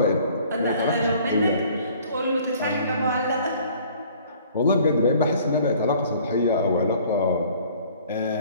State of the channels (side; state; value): both; inverted; correlation -0.54